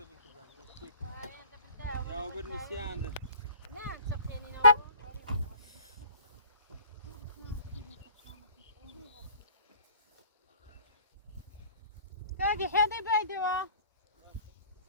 بنكبر نشتيك يا وبرني سياندر نعم سخيني باقي حياتي بايدوا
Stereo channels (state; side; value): inverted; both; correlation -0.51